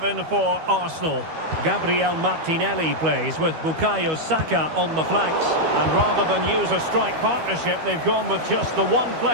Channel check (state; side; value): late; left; 13 ms